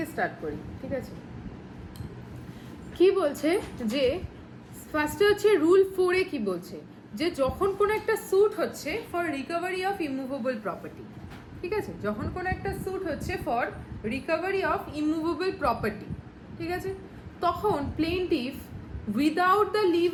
start করি, ঠিক আছে? কি বলছে যে ফার্স্টে হচ্ছে রুল 4 কি বলছে যে যখন কোনো একটা স্যুট হচ্ছে for recovery of immovable property, ঠিক আছে? যখন কোনো একটা স্যুট হচ্ছে for recovery of immovable property, ঠিক আছে, তখন plaintiff without the leave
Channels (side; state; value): both; identical; correlation 1.00